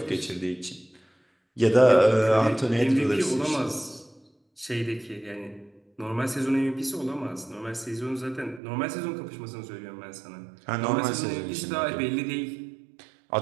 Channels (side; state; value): left; drops out; at 8.6 s